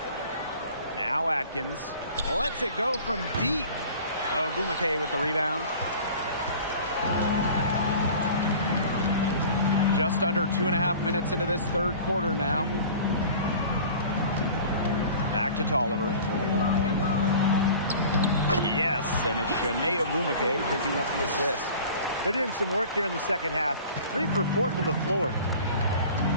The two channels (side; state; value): both; inverted; correlation -0.43